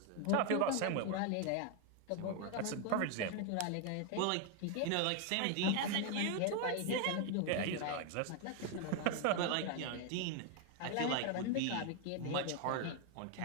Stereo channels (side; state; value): both; different; correlation 0.01